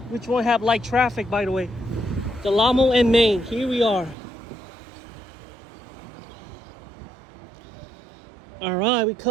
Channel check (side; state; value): left; drops out; at 4.2 s